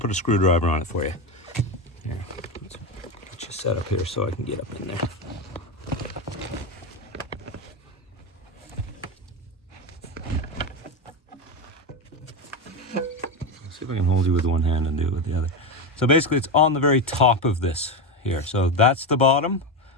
a screwdriver on it for you. Here, let's get you set up here so I can get up in there. Let's see if I can hold you with one hand and do it with the other. So basically it's on the very top of this here. So that's the bottom.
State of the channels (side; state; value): both; normal; correlation 0.15